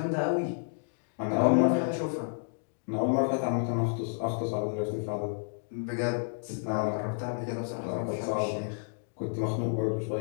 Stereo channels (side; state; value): right; silent; digital silence